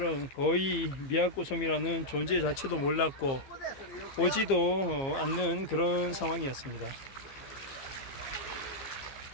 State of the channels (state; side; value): late; right; 15 ms